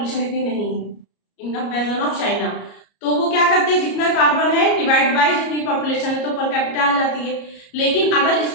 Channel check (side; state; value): right; late; 33 ms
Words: इतनी नहीं है इन कंपेरिजन ऑफ चाइना, तो वो क्या करते हैं, जितना कार्बन है डिवाइड बाय जितनी पॉपुलेशन है तो पर कैपिटा आ जाती है। लेकिन अगर